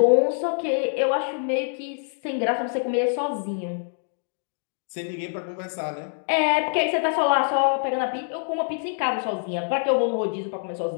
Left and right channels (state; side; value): silent; right; digital silence